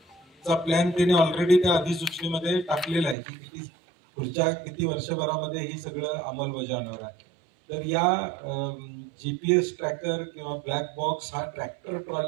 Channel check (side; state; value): left; drops out; at 3.2 s